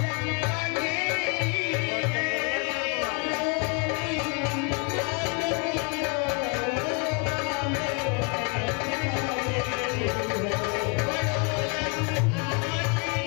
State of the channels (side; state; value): right; quieter; 32.5 dB